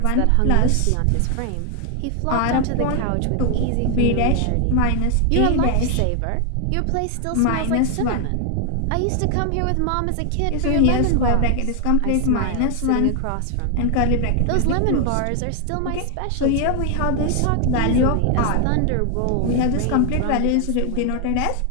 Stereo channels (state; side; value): different; both; correlation 0.00